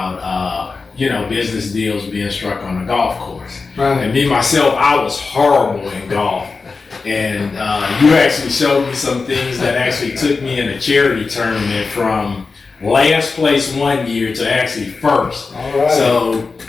business deals being struck on the golf course. Right. And me, myself, I was horrible in golf. And you actually showed me some things that actually took me in a charity tournament from last place one year to actually first. All right. So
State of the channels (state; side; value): quieter; right; 4.3 dB